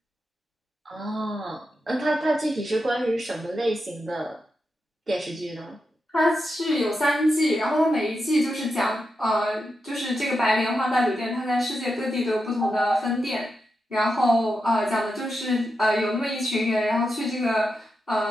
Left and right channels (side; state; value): both; normal; correlation 0.87